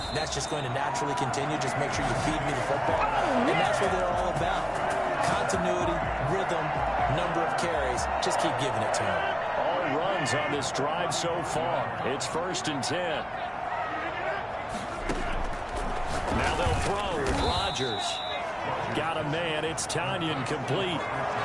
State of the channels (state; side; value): identical; both; correlation 1.00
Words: that's just going to naturally continue? Just make sure you feed me the football. And that's what they're all about. Continuity, rhythm, number of carries. Just keep giving it to him. All runs on this drive so far. It's 1st and 10. Now they'll throw. Rodgers got a man. It's Tanyan complete.